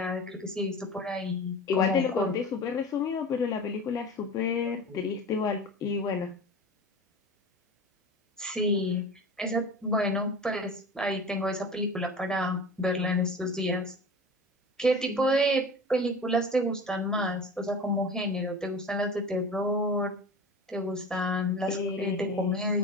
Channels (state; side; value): normal; both; correlation 0.35